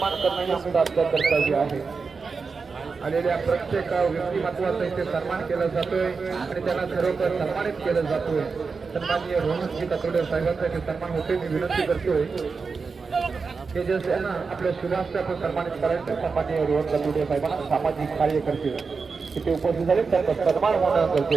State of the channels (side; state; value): left; quieter; 4.8 dB